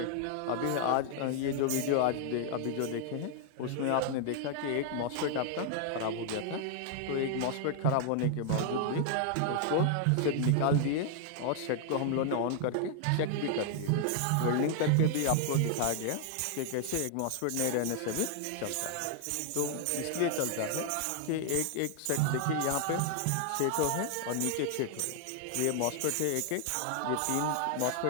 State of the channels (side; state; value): both; different; correlation 0.00